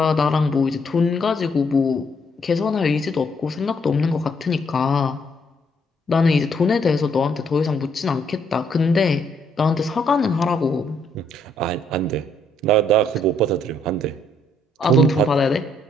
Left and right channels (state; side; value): normal; both; correlation 0.70